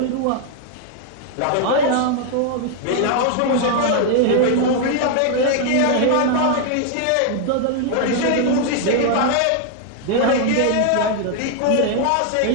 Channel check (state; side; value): different; both; correlation 0.00